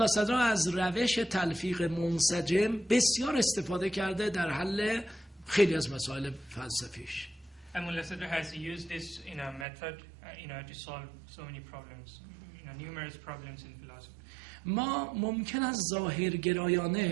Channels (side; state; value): left; drops out; at 9.7 s